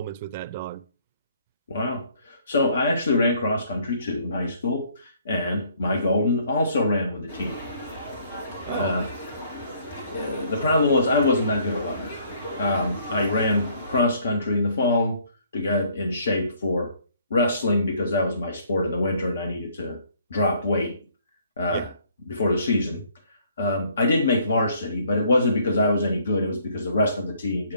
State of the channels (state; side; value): inverted; both; correlation -0.62